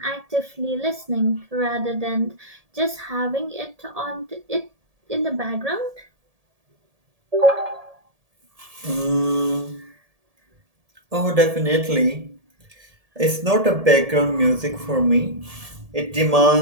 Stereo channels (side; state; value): left; late; 1.7 ms